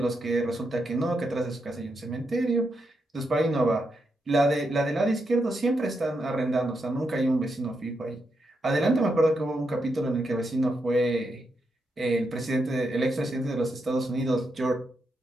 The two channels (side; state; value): both; normal; correlation 0.83